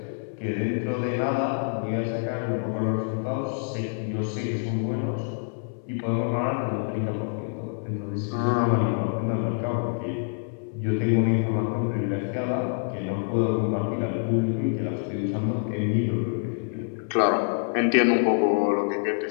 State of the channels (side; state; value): right; silent; 61 dB below the other